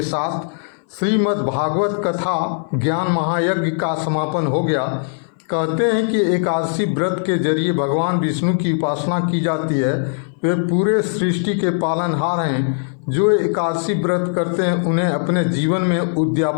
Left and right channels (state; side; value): silent; right; 60 dB below the other